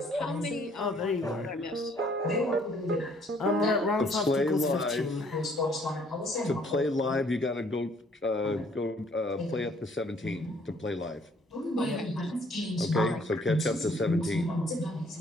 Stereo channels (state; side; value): normal; both; correlation 0.62